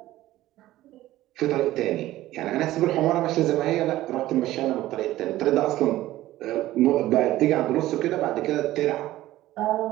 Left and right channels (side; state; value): left; quieter; 15.5 dB